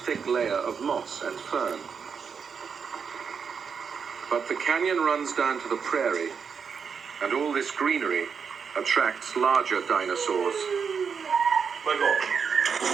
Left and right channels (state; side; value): quieter; left; 6.2 dB